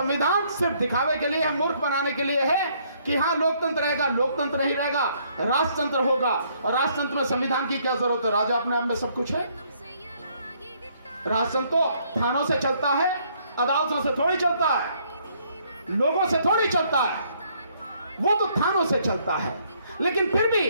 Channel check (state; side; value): inverted; both; correlation -0.67